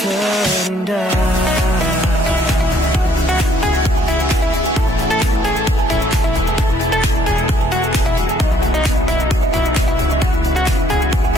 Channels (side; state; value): both; normal; correlation 0.65